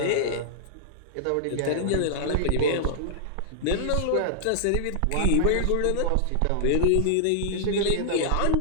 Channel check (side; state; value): both; different; correlation -0.01